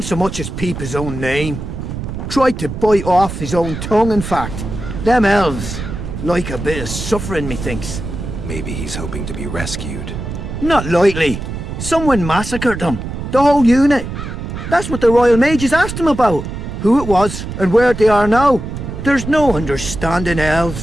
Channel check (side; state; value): right; noise; rumble, 7 dB below the sound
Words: so much as peep his own name. Tried to bite off his own tongue, in fact. Them elves like a bit of suffering, methinks. Maybe he's hoping to be rescued. Not likely. Someone massacred them. The whole unit. That's what the Royal Mages asked him about. Who it was, and where they are now. There's no understanding